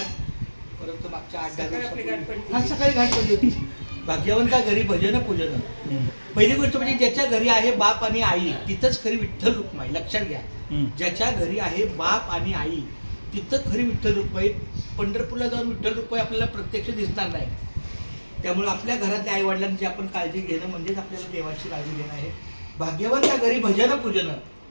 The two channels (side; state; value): both; inverted; correlation -1.00